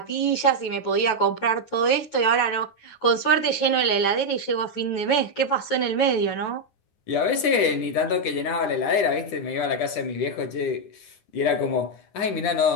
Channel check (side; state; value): right; late; 9.9 ms